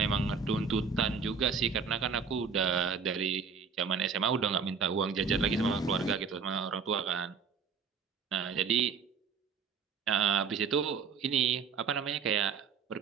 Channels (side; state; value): left; quieter; 5.7 dB